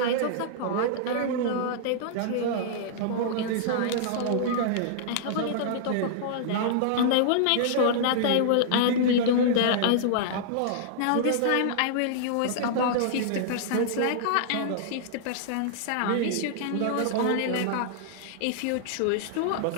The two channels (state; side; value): different; both; correlation -0.01